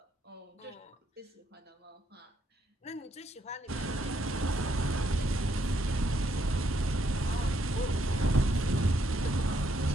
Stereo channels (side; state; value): both; normal; correlation 0.75